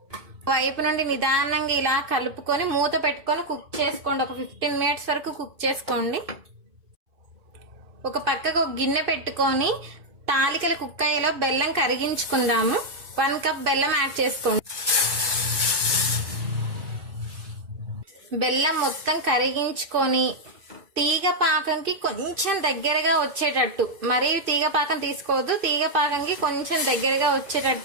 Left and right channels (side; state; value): left; late; 2.5 ms